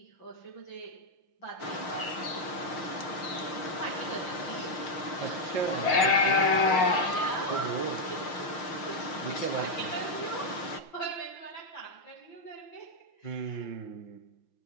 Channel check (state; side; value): late; right; 5.8 ms